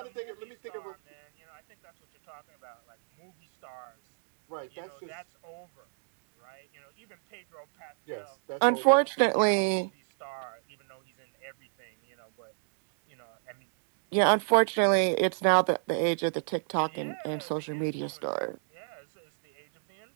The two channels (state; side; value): silent; left; digital silence